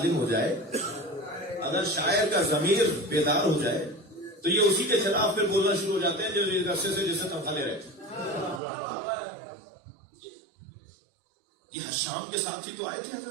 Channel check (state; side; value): drops out; left; at 8.6 s